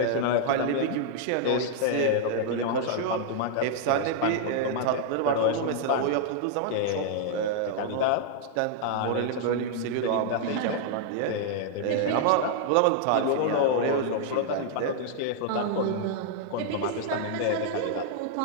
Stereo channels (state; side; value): different; both; correlation -0.01